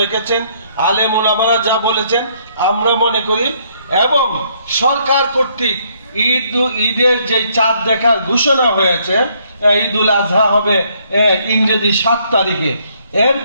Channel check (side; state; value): both; inverted; correlation -0.68